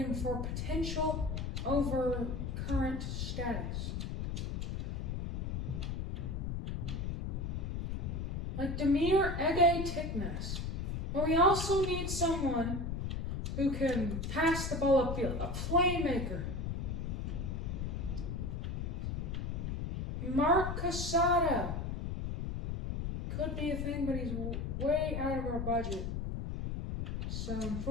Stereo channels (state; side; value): noise; left; rumble, 3 dB below the sound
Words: for potential over current status. Like Demir Ege Tiknes. But we also need someone who can pass the ball upfield, a playmaker. Mark Casado. Could be a thing, but he's way out of our budget. So